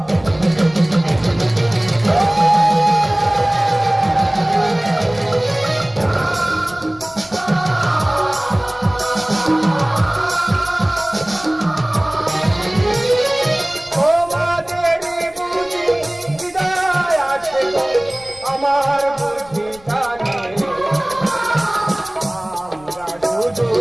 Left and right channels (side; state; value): left; noise; rumble, 25 dB below the sound